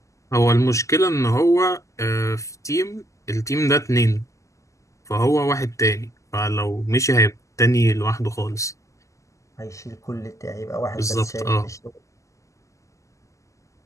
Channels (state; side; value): late; right; 0.16 ms